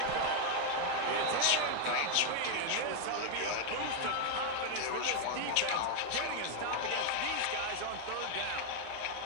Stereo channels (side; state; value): both; different; correlation 0.00